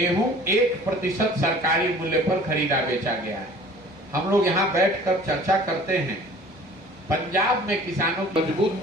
1% सरकारी मूल्य पर खरीदा बेचा गया है। हम लोग यहाँ बैठकर चर्चा करते हैं, पंजाब में किसानों मजबूत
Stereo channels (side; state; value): both; normal; correlation 0.47